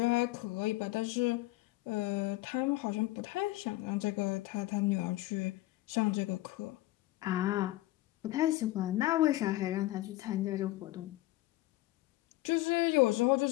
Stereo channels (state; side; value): quieter; right; 17.7 dB